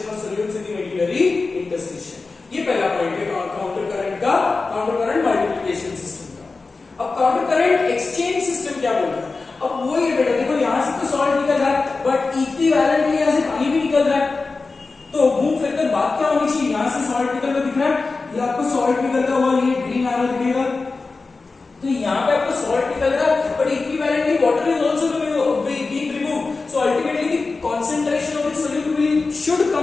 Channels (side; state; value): right; quieter; 3.9 dB